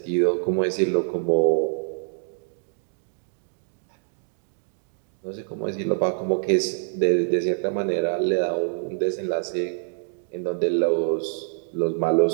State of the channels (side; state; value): left; silent; digital silence